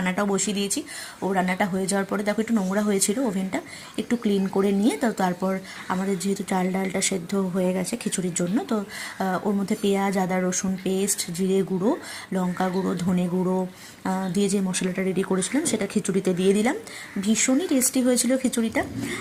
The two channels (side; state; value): both; identical; correlation 1.00